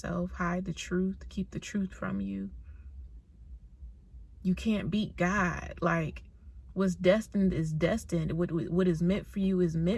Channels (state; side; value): identical; both; correlation 1.00